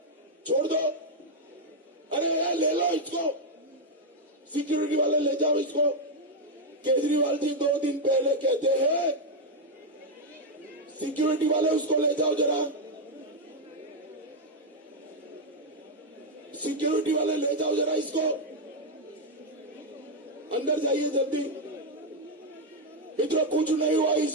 छोड़ दो, अरे ले लो इसको, सिक्योरिटी वाले ले जाओ इसको। केजरीवाल जी 2 दिन पहले कहते हैं, सिक्योरिटी वाले उसको ले जाओ जरा, सिक्योरिटी वाले ले जाओ जरा इसको, अंदर जाइए जल्दी। मित्रों, कुछ नहीं हुआ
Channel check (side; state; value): both; normal; correlation 0.02